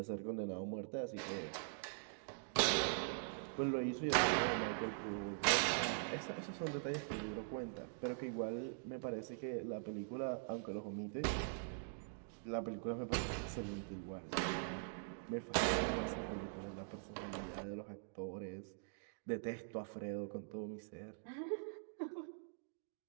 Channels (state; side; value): silent; left; digital silence